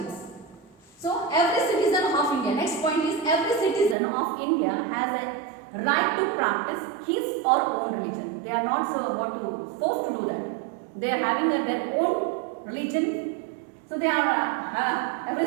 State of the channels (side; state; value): left; drops out; at 4.0 s